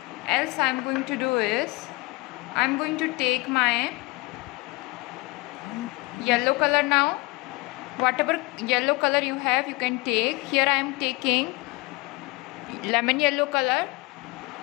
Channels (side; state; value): right; quieter; 24.4 dB